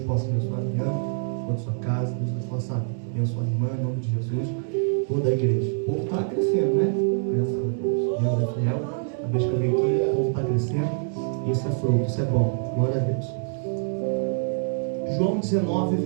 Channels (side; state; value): left; silent; 62 dB below the other